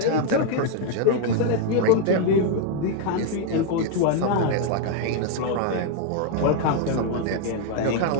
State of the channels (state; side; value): different; both; correlation 0.01